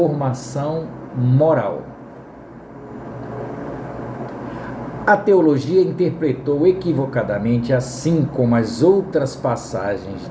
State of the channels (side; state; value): both; identical; correlation 1.00